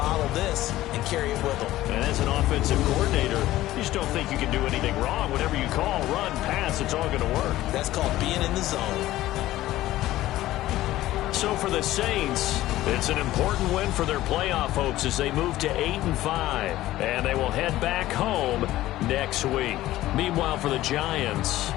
this and carry it with them. And as an offensive coordinator, you just don't think you can do anything wrong. Whatever you call, run, pass, it's all going to work. That's called being in the zone. So for the Saints, it's an important win for their playoff hopes as they move to 8-5. And they will head back home next week. Meanwhile, for the Giants,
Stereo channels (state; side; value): quieter; right; 15.5 dB